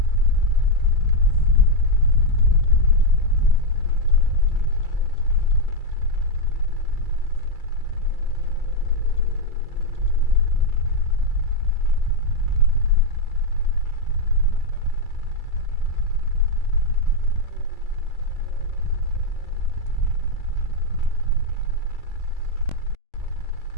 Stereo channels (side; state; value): right; late; 2.3 ms